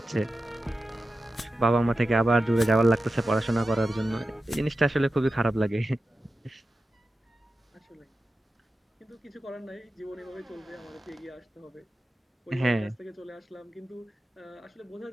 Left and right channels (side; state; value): both; normal; correlation 0.92